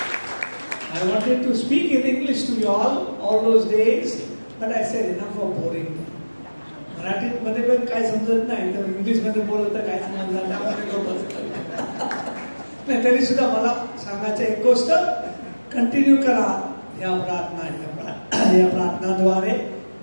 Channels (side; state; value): both; inverted; correlation -1.00